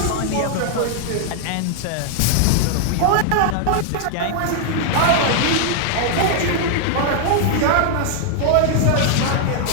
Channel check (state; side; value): different; both; correlation 0.00